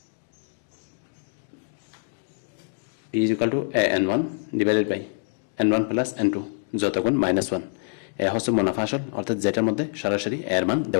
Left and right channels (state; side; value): silent; right; 61 dB below the other